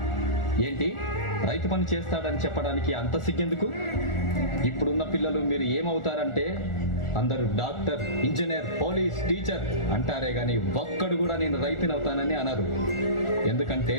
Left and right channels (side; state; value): right; late; 1.4 ms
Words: ఏంటి రైతు పని చేస్తాడని చెప్పడానికి అంత సిగ్గెందుకు? ఇప్పుడున్న పిల్లలు మీరు ఏమవుతారంటే అందరూ డాక్టర్, ఇంజనీర్, పోలీస్, టీచర్ అంటారే గాని ఒక్కడు కూడా నేను రైతుని అవుతానని అనరు. ఎందుకంటే